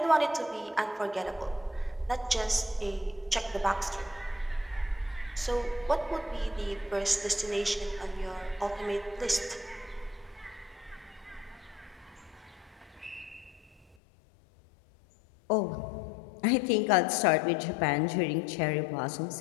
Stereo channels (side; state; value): right; drops out; at 14.0 s